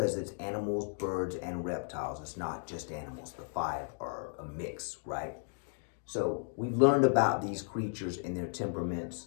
it's animals, birds, and reptiles. It's not just animals. The 5 are a mix, right? So we've learned about these creatures and their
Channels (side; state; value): right; silent; 55 dB below the other